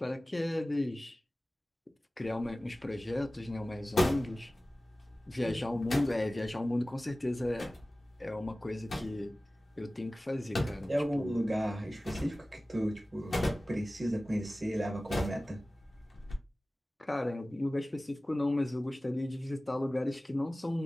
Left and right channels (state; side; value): normal; both; correlation 0.97